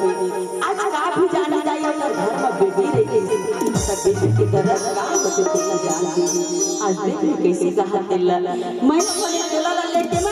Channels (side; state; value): both; identical; correlation 1.00